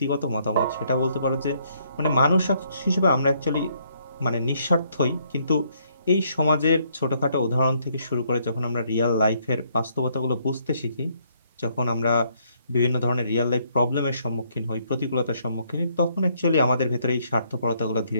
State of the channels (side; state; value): both; inverted; correlation -0.70